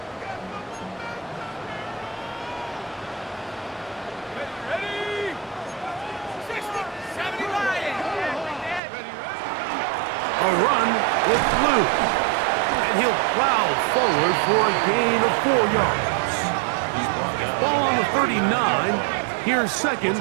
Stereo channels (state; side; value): drops out; left; at 8.8 s